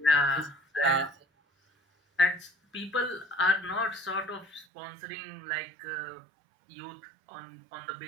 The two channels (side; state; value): left; drops out; at 4.7 s